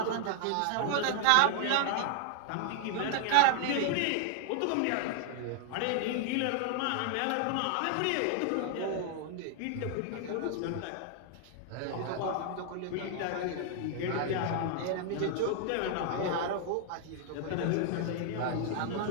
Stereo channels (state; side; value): different; both; correlation 0.00